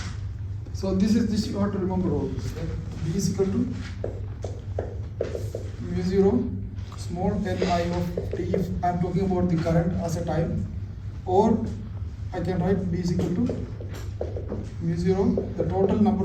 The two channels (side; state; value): both; identical; correlation 1.00